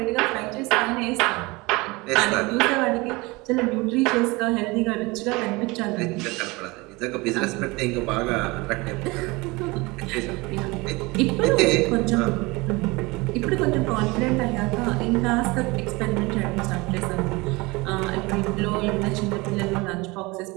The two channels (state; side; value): quieter; left; 24.0 dB